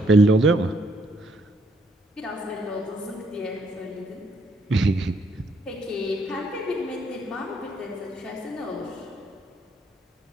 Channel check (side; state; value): both; normal; correlation 0.70